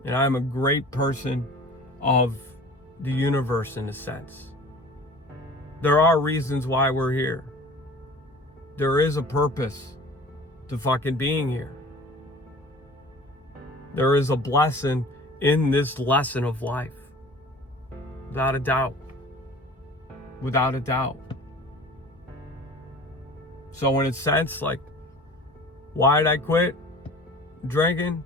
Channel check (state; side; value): normal; both; correlation 0.43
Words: And I'm a great person of the universe in a sense. There are reasons why we're here. There is a purpose to fucking being here. There is a blessing in this lesson of life. Without a doubt. Without a doubt. So in a sense, like, why did I quit drinking